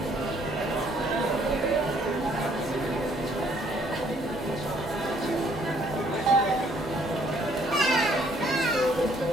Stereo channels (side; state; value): both; normal; correlation 0.64